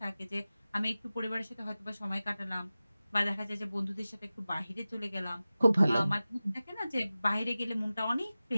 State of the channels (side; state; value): both; inverted; correlation -0.96